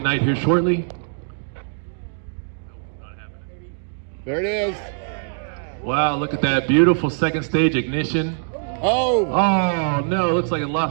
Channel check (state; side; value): silent; left; digital silence